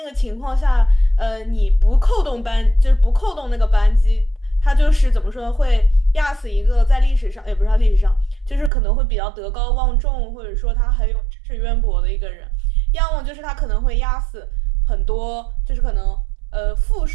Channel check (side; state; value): left; drops out; at 8.7 s